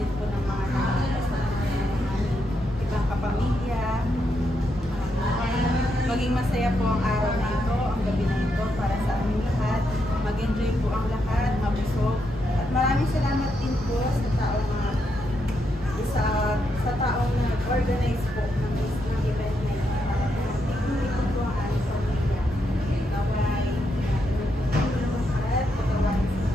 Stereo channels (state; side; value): normal; both; correlation 0.81